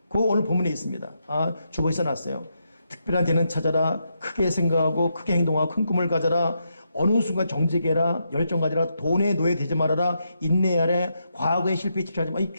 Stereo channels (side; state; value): both; inverted; correlation -0.82